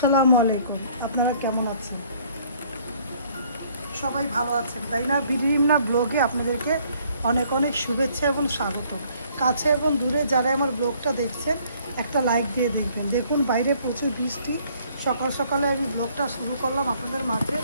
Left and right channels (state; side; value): inverted; both; correlation -0.61